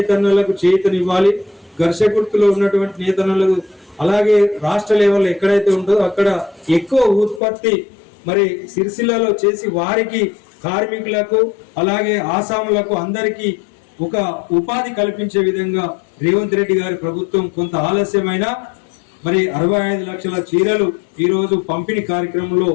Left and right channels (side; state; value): right; drops out; at 7.4 s